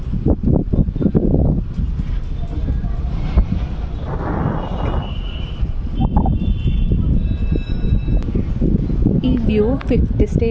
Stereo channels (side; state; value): both; identical; correlation 1.00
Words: ఈ వ్యూ 5th